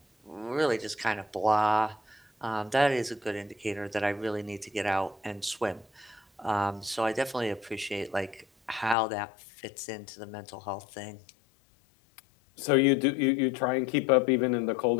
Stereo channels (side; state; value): right; drops out; at 9.0 s